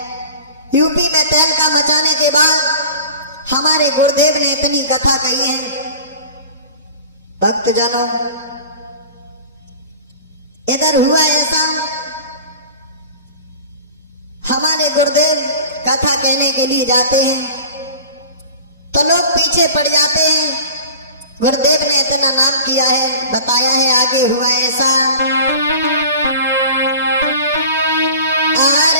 यूपी में तहलका मचाने के बाद हमारे गुरुदेव ने इतनी कथा कही है। भक्तजनों, इधर हुआ ऐसा, हमारे गुरुदेव कथा कहने के लिए जाते हैं तो लोग पीछे पड़ जाते हैं। गुरुदेव ने इतना नाम किया है, बताया है आगे हुआ ऐसा,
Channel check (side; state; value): both; inverted; correlation -0.39